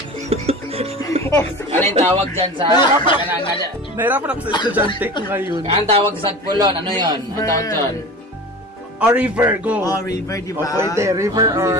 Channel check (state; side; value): normal; both; correlation 0.35